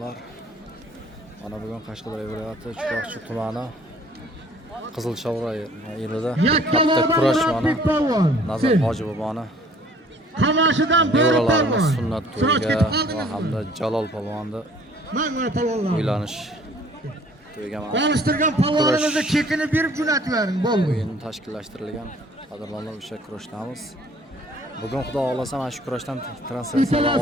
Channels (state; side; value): normal; both; correlation 0.55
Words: Mana bugun Qashqadaryo viloyati Chiroqchi tumani Qizilshavra yerida katta kurash mana Nazar Hoji boboni nevaralarimiz sunnat to'yiga va hamda Jalol polvonni uylanish to'yiga Konuşturgan polvonimizni chekini berib jo'natib bering, bo'ldi. O'yin tashkillashtirilgan. Qadrdonlar, o'sha kurashdamiz. Bugun xudo xolasa mana shu kurashdan translyatsiyalar